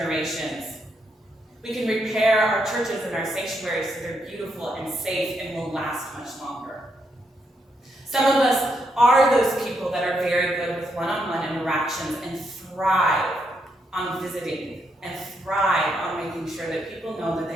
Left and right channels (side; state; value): both; normal; correlation 0.79